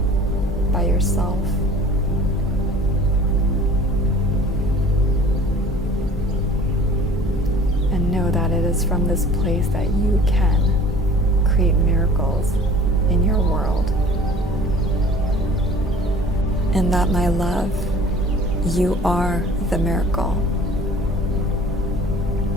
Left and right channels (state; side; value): normal; both; correlation 0.46